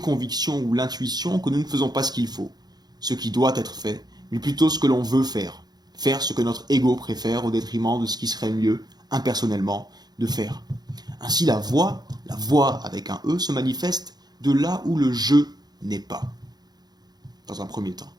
ou l'intuition que nous ne faisons pas ce qu'il faut, ce qui doit être fait, mais plutôt ce que l'on veut faire, faire ce que notre ego préfère au détriment de ce qui serait mieux, impersonnellement, de faire. Ainsi la voix avec un E, se manifeste de là où le je n'est pas, dans un premier temps.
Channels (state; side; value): late; left; 0.19 ms